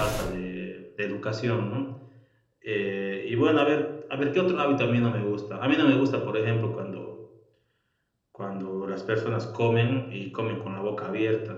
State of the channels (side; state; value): both; identical; correlation 1.00